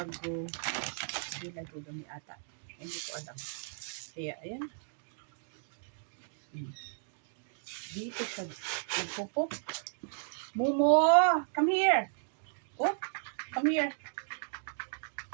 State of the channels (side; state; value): left; silent; digital silence